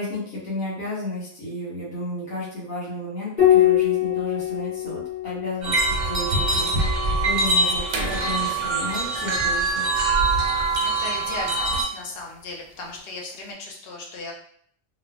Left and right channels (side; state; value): both; normal; correlation -0.06